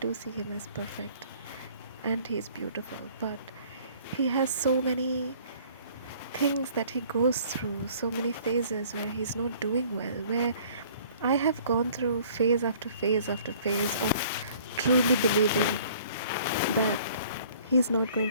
see him as perfect and he's beautiful, but he has so many things that he goes through, so many phases where he's not doing well, where I have gone through phase after phase after phase of truly believing that he's not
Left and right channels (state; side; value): inverted; both; correlation -0.55